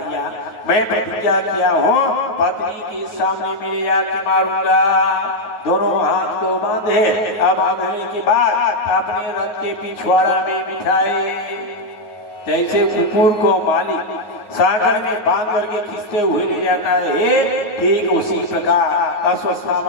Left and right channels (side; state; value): right; late; 9.4 ms